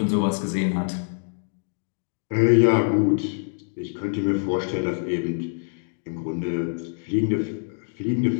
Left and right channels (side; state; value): right; silent; digital silence